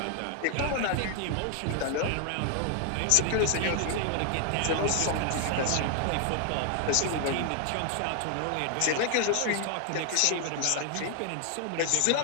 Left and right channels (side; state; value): both; different; correlation 0.00